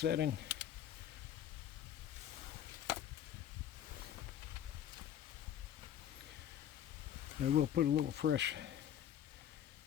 I will put a little fresh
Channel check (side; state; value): right; quieter; 10.4 dB